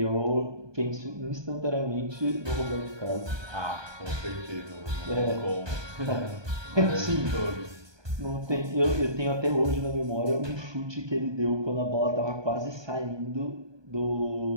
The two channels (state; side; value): late; left; 1.2 ms